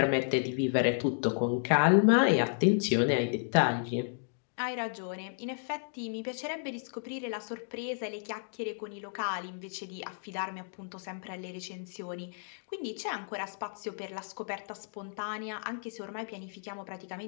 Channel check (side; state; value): right; silent; digital silence